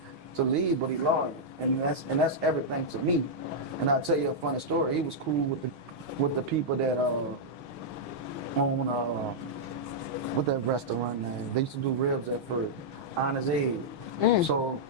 to leave, but he loyal. And that's everything to me. And I'll tell you a funny story. He was cool with the people that on what that restaurant name? They used to do ribs at first. Honest Aid. So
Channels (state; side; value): late; left; 6.3 ms